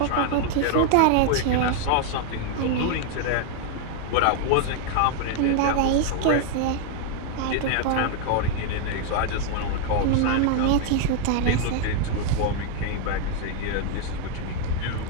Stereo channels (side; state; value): both; different; correlation 0.00